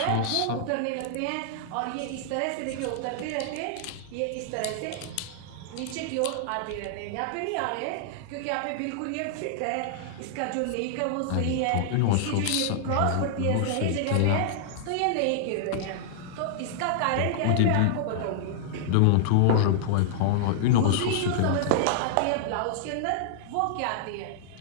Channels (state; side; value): different; both; correlation -0.01